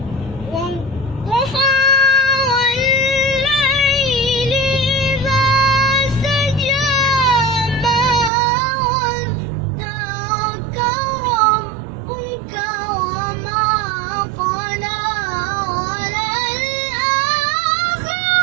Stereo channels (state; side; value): drops out; left; at 8.3 s